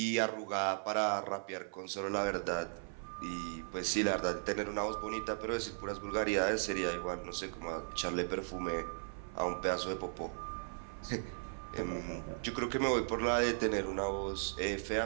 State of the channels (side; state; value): left; silent; 53 dB below the other